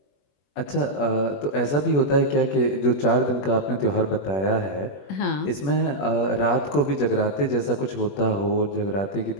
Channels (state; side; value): late; right; 21 ms